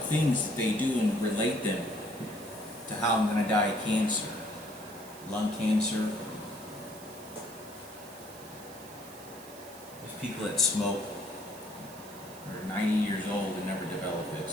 things that they do and relate them to how I'm going to die of cancer, lung cancer. There's people that smoke, are 90 years old and never develop it,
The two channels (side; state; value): right; noise; hiss, 18 dB below the sound